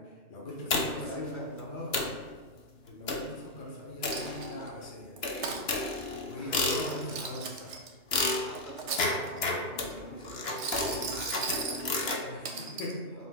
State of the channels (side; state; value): right; late; 2.9 ms